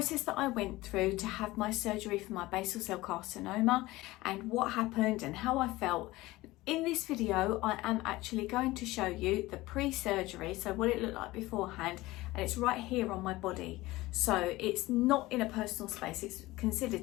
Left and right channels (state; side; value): quieter; right; 19.1 dB